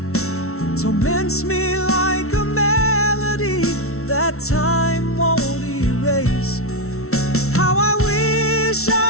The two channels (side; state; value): right; late; 0.63 ms